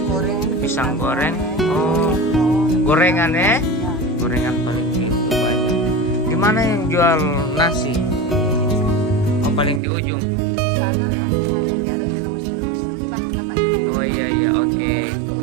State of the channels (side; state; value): left; drops out; at 9.8 s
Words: Pisang goreng. Oh, gorengan ya? Gorengan paling itu banyak. Gimana yang jual nasi? Oh paling di ujung. Oh iya oke.